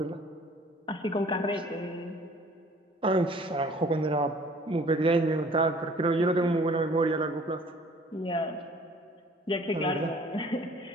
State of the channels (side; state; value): both; normal; correlation 0.53